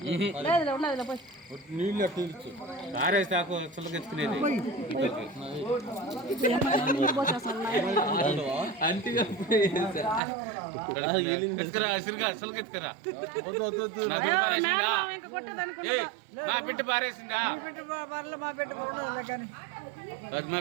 నీళ్ళు తీర్చు ఆరేసాకు చులకెత్తుకునేది చులకెత్తుకరా నా బిడ్డ పారేసిందా మా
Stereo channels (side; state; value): left; drops out; at 10.2 s